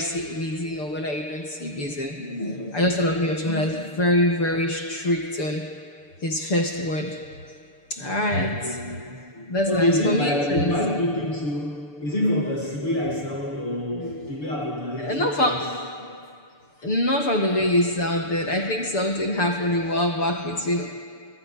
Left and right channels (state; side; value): late; right; 6.8 ms